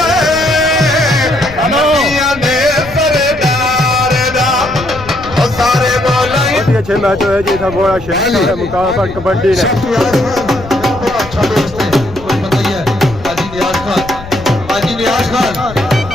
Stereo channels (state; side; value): noise; left; rumble, 15 dB below the sound